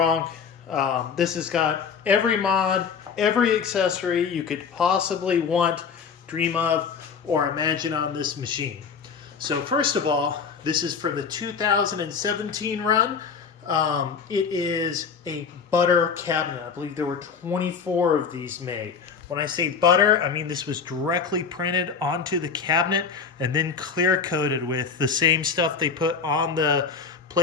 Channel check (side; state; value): right; quieter; 6.0 dB